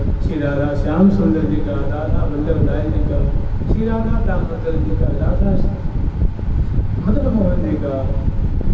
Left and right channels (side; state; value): both; identical; correlation 1.00